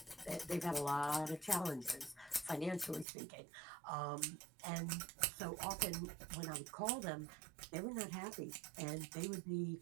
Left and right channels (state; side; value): drops out; left; at 3.1 s